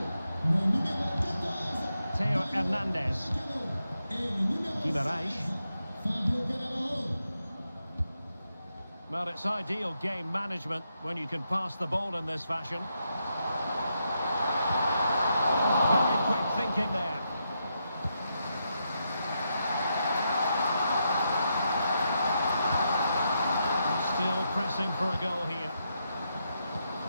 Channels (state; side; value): inverted; both; correlation -0.83